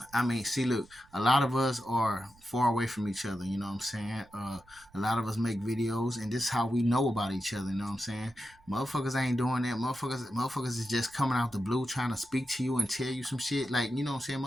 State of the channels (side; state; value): right; noise; rumble, 28 dB below the sound